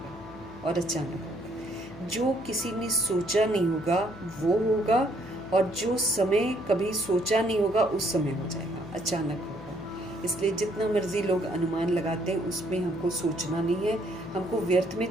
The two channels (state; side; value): noise; left; hum, 17 dB below the sound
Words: और अचानक होगा। जो किसी ने सोचा नहीं होगा वो होगा, और जो समय कभी सोचा नहीं होगा उस समय हो जाएगा, अचानक होगा। इसलिए जितना मर्जी लोग अनुमान लगाते हैं उसमें हमको सोचना नहीं है, हमको व्यर्थ में